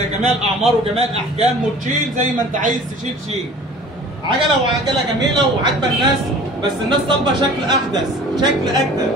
الأعمار وجميع الأحجام وتشيل زي ما أنت عايز تشيل شيل. عجله جميله وعاجبه الناس، بس الناس طالبه شكل احدث، شكل اجدد.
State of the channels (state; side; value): normal; both; correlation 0.45